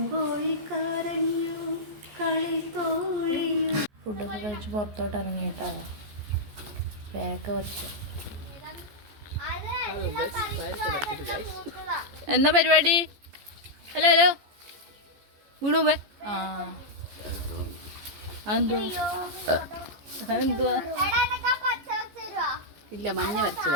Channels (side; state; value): left; late; 14 ms